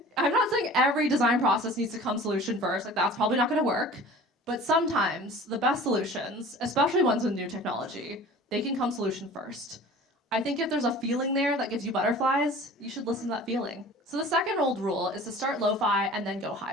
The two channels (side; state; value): both; normal; correlation 0.43